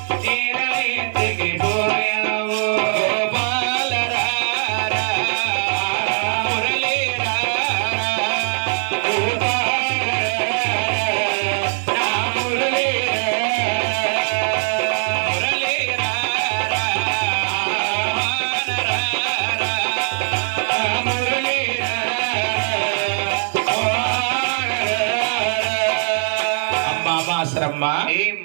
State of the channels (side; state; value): left; silent; 56 dB below the other